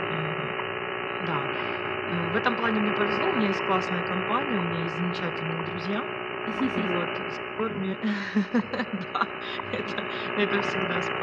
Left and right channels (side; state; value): both; identical; correlation 1.00